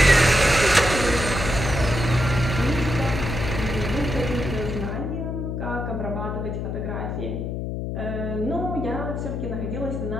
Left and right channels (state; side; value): noise; left; hum, 3 dB below the sound